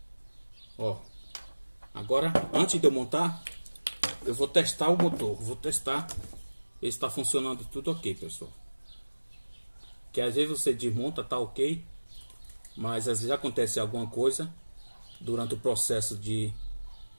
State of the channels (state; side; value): inverted; both; correlation -1.00